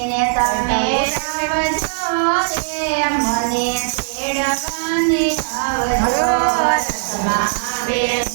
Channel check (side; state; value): left; silent; digital silence